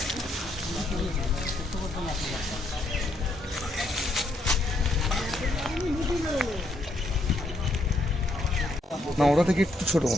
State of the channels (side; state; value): both; normal; correlation 0.74